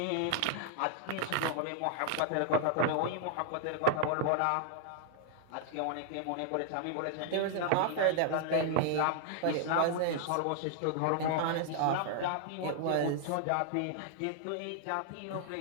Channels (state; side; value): different; both; correlation -0.01